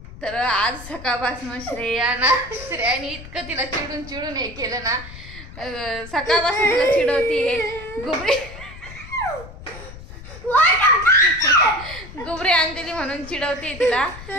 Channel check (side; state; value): left; noise; rumble, 15 dB below the sound